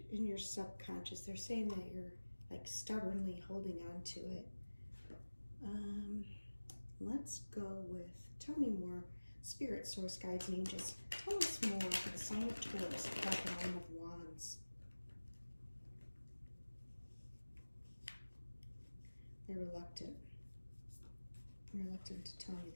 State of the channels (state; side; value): inverted; both; correlation -1.00